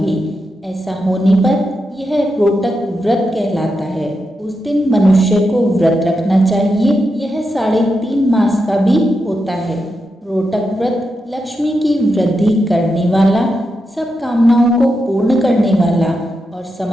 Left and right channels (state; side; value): normal; both; correlation 0.86